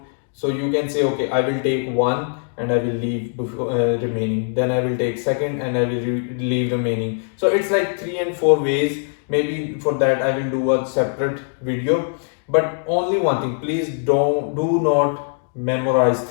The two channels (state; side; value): silent; right; digital silence